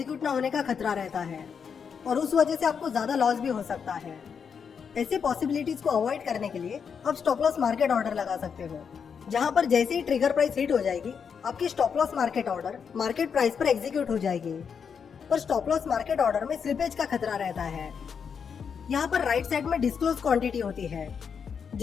ना होने का खतरा रहता है और उस वजह से आपको ज्यादा लॉस भी हो सकता है। ऐसी पॉसिबिलिटीज को अवॉइड करने के लिए आप स्टॉप लॉस मार्केट ऑर्डर लगा सकते हो, जहां पर जैसे ही ट्रिगर प्राइस हिट हो जाएगी आपकी stop loss market order market price पर एग्जीक्यूट हो जाएगी। पर स्टॉप लॉस मार्केट ऑर्डर में स्लिपेज का खतरा रहता है। यहाँ पर राइट साइड में डिस्क्लोज क्वांटिटी होती है।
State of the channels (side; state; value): right; quieter; 6.6 dB